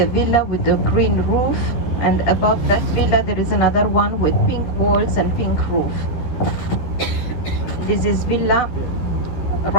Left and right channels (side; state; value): right; late; 12 ms